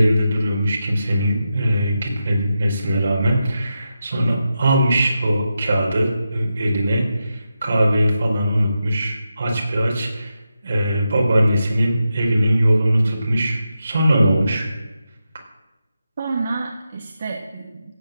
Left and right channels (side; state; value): both; inverted; correlation -0.88